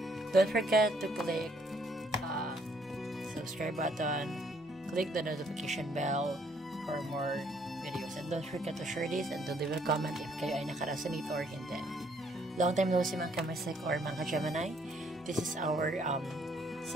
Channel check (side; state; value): both; normal; correlation 0.67